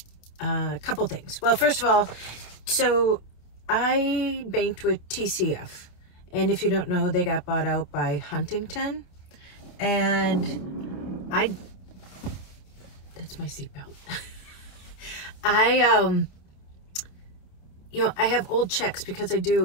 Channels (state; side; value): late; right; 28 ms